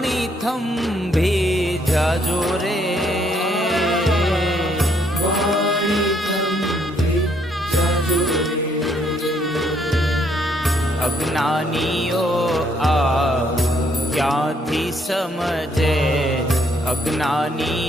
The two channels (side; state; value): both; normal; correlation 0.70